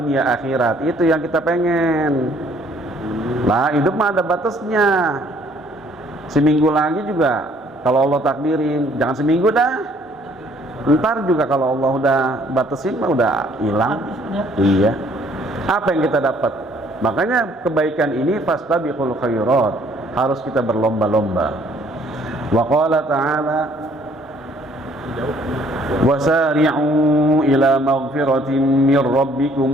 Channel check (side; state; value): both; normal; correlation 0.61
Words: akhirat, itu yang kita pengen. Lah hidup mah ada batasnya. Seminggu lagi juga kalau Allah takdirin, jangan seminggu dah. Ntar juga kalau Allah udah batasin mah udah hilang. Iya. Apa yang kita dapat? Makanya kebaikan ini fastabiqul khairat, harus kita berlomba-lomba. Wa qala ta'ala, wasari'u ila maghfiratin min